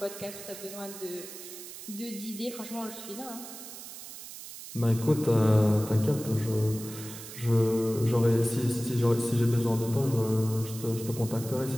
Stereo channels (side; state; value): right; noise; hiss, 13 dB below the sound